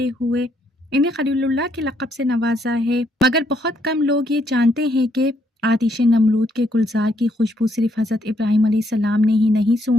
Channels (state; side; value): normal; both; correlation 0.72